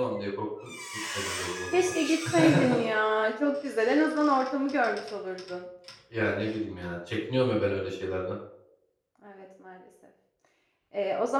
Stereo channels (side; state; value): both; identical; correlation 1.00